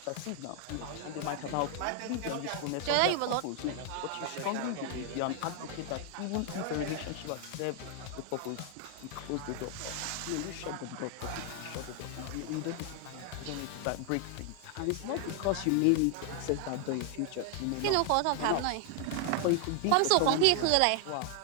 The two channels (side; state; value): both; different; correlation 0.00